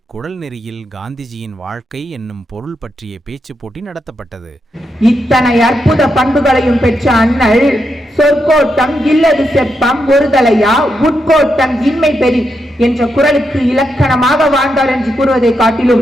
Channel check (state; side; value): normal; both; correlation 0.83